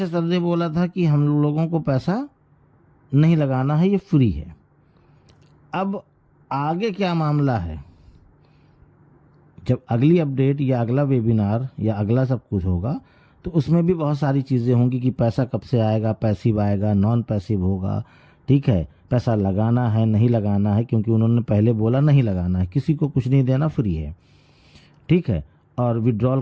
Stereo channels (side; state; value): both; identical; correlation 1.00